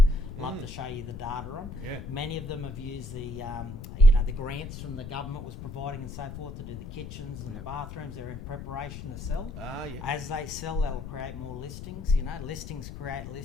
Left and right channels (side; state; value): left; noise; rumble, 9 dB below the sound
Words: love to show you the data on. Many of them have used the the grants from the government was providing and so forth to do the kitchens and the bathrooms. They're in preparation to sell. As they sell, they'll create more listings. Listings create